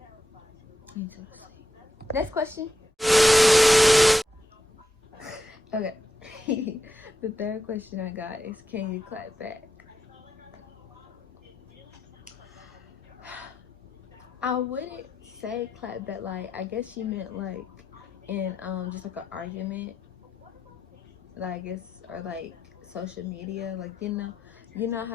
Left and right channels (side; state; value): both; normal; correlation 0.85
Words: Next question. Okay. The third question I got is, can you clap back? I wouldn't say clap back, like I guess she meant like in just like an argument, like I guess, or like social media, like you know